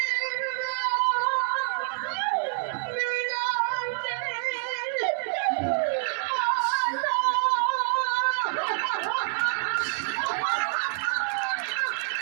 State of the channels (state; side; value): silent; left; digital silence